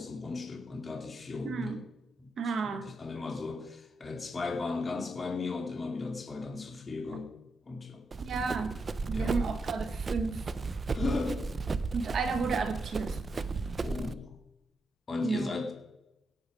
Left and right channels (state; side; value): normal; both; correlation 0.83